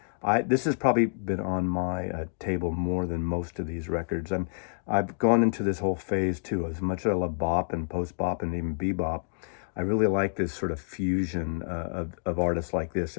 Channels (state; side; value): silent; right; digital silence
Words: This has probably been on my table more than most of these records. I've gone into this whole phase too. As much as I love bop and post-bop and even bebop, I really like this sort of fusion of artists like this.